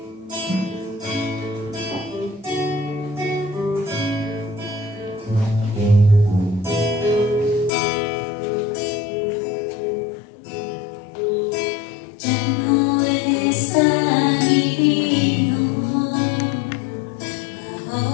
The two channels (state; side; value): drops out; right; at 7.7 s